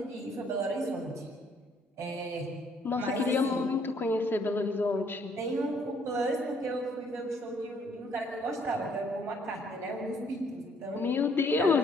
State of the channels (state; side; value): normal; both; correlation 0.65